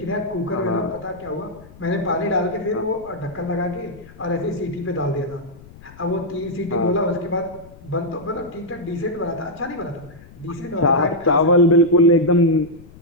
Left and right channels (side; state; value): left; noise; rumble, 21 dB below the sound